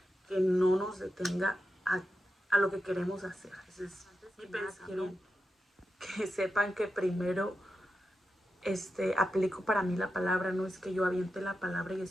que no nos detenga a lo que queremos hacer. Ese es mi pensamiento. Que sepan que primero aplico para mí la palabra, no es que yo aviente la palabra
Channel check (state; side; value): normal; both; correlation 0.88